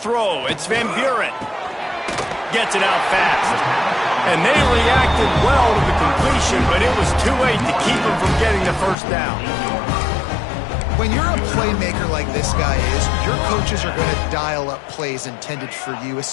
it's Van Buren. Gets it out fast. And they reacted well to the completion, but it was too late to keep him from getting the first down. When you're a playmaker like this guy is, your coaches are going to dial up plays intended for you,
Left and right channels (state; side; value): drops out; right; at 9.0 s